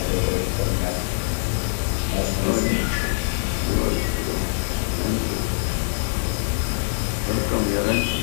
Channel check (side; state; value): right; silent; 55 dB below the other